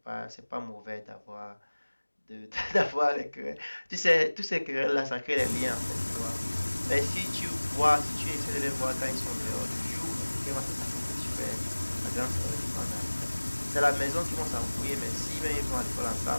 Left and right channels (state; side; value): inverted; both; correlation -1.00